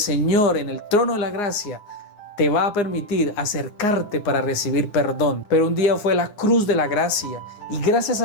en el trono de la gracia te va a permitir acercarte para recibir perdón. Pero un día fue la cruz de la gracia. Y gracias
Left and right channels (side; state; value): right; late; 9.8 ms